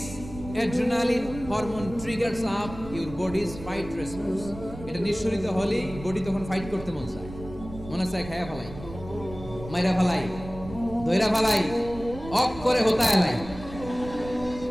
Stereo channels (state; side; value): noise; right; rumble, 13 dB below the sound